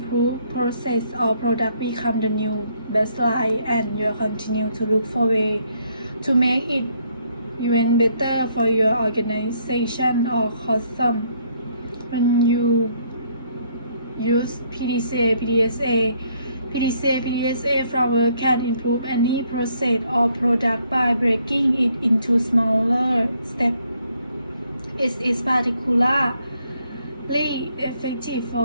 process or product become the new baseline and you continue to look for ways to make it even better for your organization or custom. When you use PDCA framework can improve any process or product by breaking it into smaller steps. It is particularly effective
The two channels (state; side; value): inverted; both; correlation -0.69